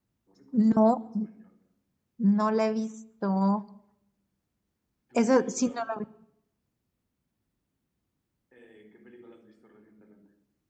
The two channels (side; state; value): both; identical; correlation 1.00